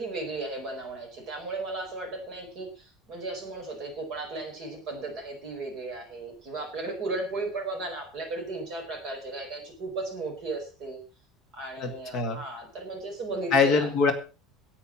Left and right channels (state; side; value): normal; both; correlation 0.40